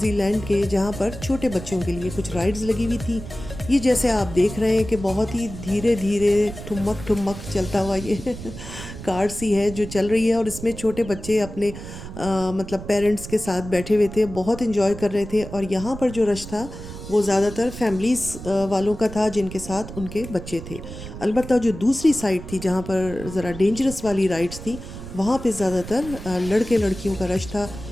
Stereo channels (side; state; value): right; noise; rumble, 11 dB below the sound